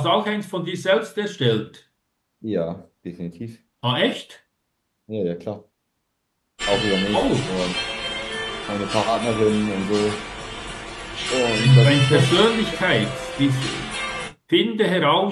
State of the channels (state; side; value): identical; both; correlation 1.00